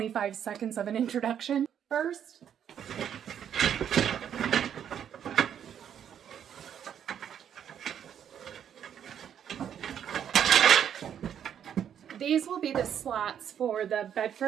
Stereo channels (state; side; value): quieter; left; 9.1 dB